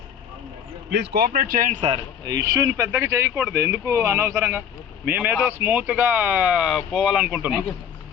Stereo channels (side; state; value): right; quieter; 8.4 dB